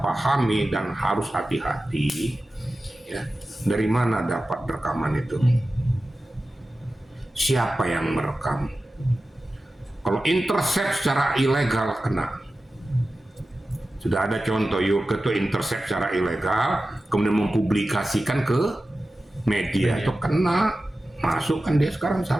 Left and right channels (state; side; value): normal; both; correlation 0.94